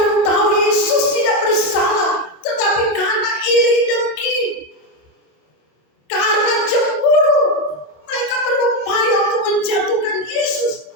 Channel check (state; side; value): late; right; 27 ms